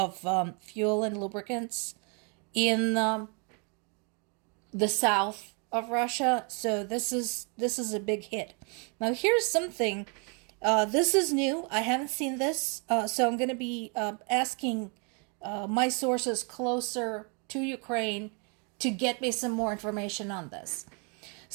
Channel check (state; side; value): quieter; left; 35.5 dB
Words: fuel and lubricants in the south of Russia. So this is a big hit. Now here's something. This is new. I haven't seen this, so I'm going to be asking my sources closer to Ukraine to get me some more information on this.